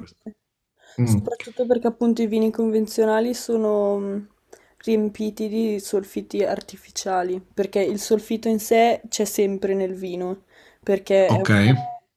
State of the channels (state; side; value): identical; both; correlation 1.00